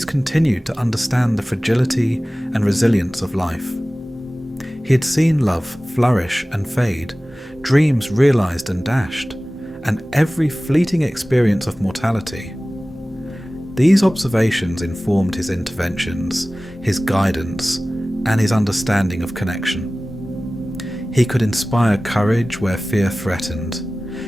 continued to understand the fragility and resilience of life. He had seen love flourish and fade, dreams realized and dashed, and every fleeting experience of mortality. These observations informed his interventions, his guidance, and his understanding of connection. He could inspire courage where fear threatened,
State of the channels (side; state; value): both; normal; correlation 0.97